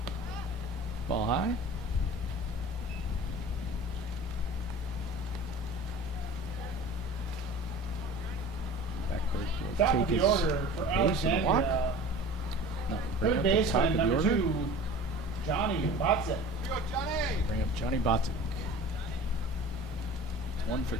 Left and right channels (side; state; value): both; normal; correlation 0.40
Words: Ball high. Backbird will Top take of the his order for base and walk. Alexandria, No, bring third up the top baseman, of the number order. 2, Johnny Botzik. Here we go, Johnny. Bring up Johnny Botic. It's 1 for